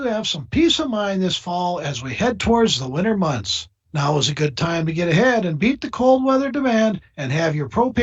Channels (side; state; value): both; identical; correlation 1.00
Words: have some peace of mind this fall as we head towards the winter months. Now is a good time to get ahead and beat the cold weather demand and have your